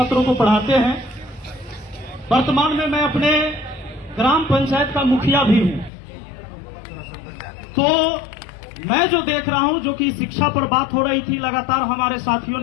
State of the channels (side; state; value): right; drops out; at 5.9 s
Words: को पढ़ाते हैं। वर्तमान में मैं अपने ग्राम पंचायत का मुखिया भी हूं। तो मैं जो देख रहा हूं, जो कि शिक्षा पर बात हो रही थी, लगातार हमारे साथियों